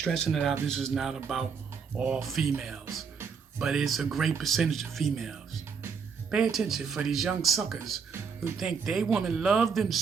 it out. This is not about all females, but it's a great percentage of females. Pay attention for these young suckers who think they women love them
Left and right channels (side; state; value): left; quieter; 5.9 dB